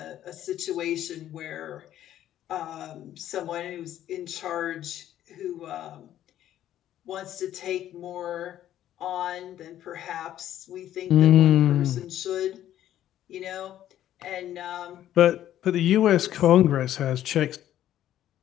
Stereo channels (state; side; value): quieter; right; 12.1 dB